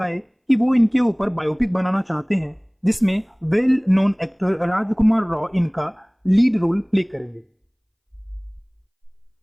कि वो इनके ऊपर बायोपिक बनाना चाहते हैं, जिसमें वेल नोन एक्टर राजकुमार राव इनका लीड रोल प्ले करेंगे।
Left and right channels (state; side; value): identical; both; correlation 1.00